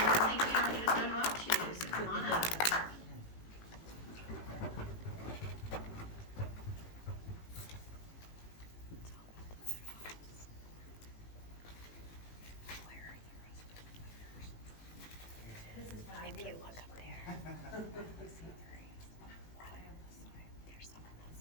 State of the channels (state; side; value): late; right; 18 ms